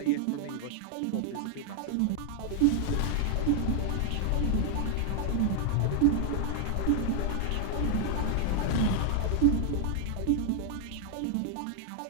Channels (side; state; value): both; different; correlation 0.00